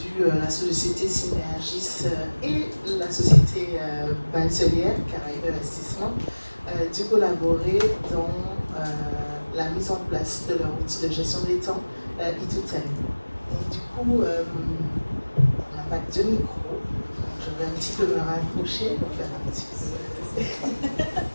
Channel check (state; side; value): inverted; both; correlation -1.00